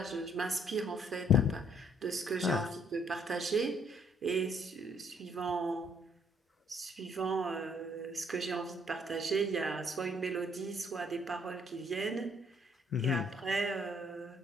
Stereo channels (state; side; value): normal; both; correlation 0.66